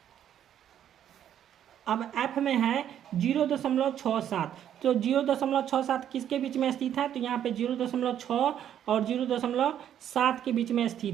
अब एफ में है 0.67, तो 0.67 किसके बीच में स्थित है, तो यहाँ पे 0.6 और 0.7 के बीच में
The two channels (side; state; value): left; quieter; 10.1 dB